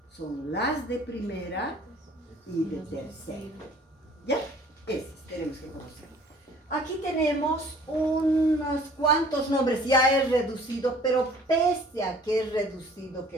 Son las de primera y de tercera. ¿Ya? Esas tenemos que conocer. Aquí tenemos unos cuantos nombres, ya es reducido, pero pese a que es reducido,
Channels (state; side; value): normal; both; correlation 0.52